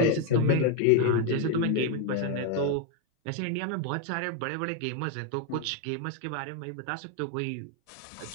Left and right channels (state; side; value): different; both; correlation 0.01